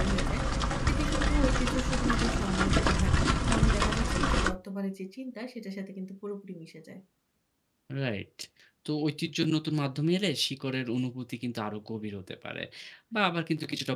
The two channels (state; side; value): identical; both; correlation 1.00